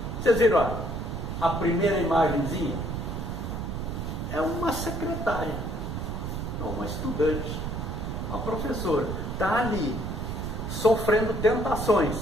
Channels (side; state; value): right; noise; rumble, 4 dB below the sound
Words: Vocês viram, olha, a primeira imagenzinha é uma secretária, uma estudante, uma professora, está ali, sofrendo tentações,